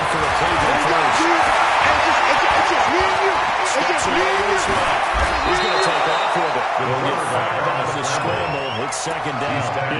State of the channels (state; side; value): identical; both; correlation 1.00